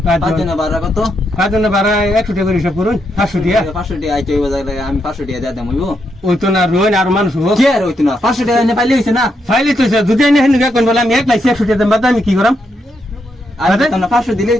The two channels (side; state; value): both; normal; correlation 0.80